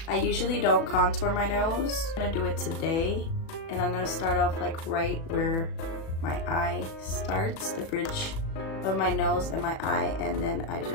I usually don't contour my nose. I'm gonna do it today, and I'm gonna start off like right where my eye starts, the bridge of my nose and my eye, and then I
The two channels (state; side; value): late; right; 37 ms